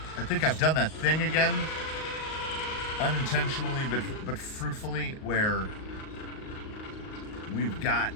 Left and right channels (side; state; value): right; late; 38 ms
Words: I think I've done that thing again. Unintentionally but fruitfully, where